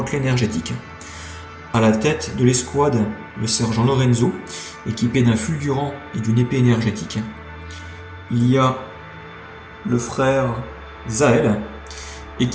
énergétique. À la tête de l'escouade, le sergent Lorenzo, équipé d'un fulgurant et d'une épée énergétique. Il y a le frère Zael,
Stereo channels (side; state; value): both; identical; correlation 1.00